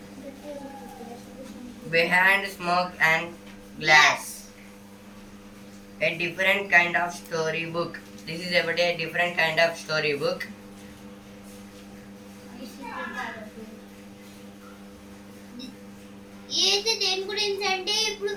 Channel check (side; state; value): both; identical; correlation 1.00